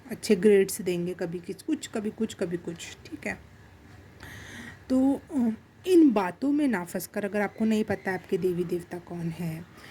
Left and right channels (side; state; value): both; identical; correlation 1.00